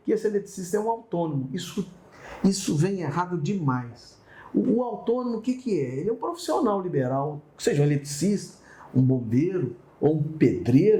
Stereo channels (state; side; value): identical; both; correlation 1.00